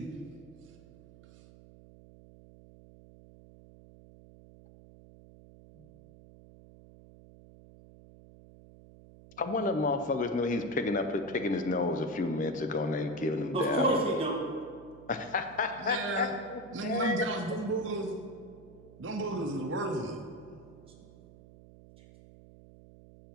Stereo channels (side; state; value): right; noise; hum, 21 dB below the sound